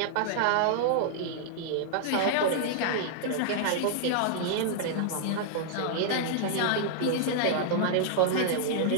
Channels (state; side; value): different; both; correlation -0.01